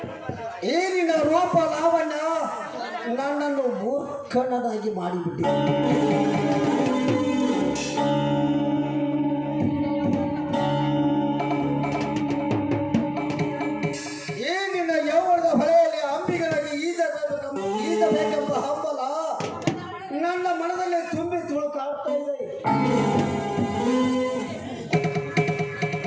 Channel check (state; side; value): identical; both; correlation 1.00